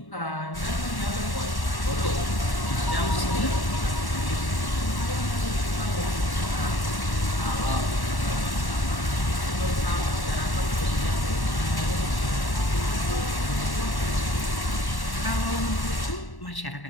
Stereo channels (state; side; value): late; right; 1.1 ms